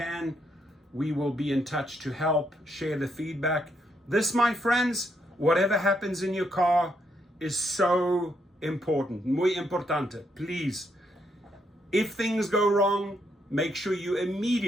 We will be in touch to help, share the feedback. This, my friends, whatever happens in your car is so important, muy importante. Please, if things go wrong, make sure you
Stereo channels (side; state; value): both; normal; correlation 0.76